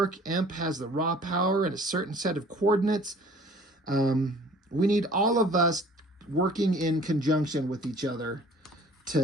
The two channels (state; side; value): normal; both; correlation 0.51